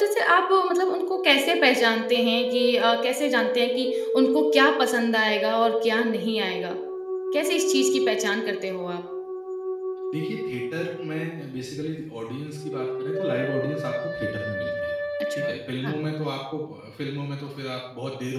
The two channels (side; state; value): both; identical; correlation 1.00